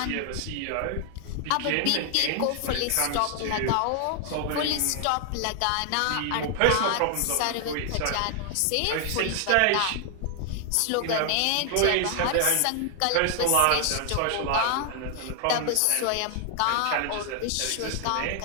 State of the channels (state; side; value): different; both; correlation 0.00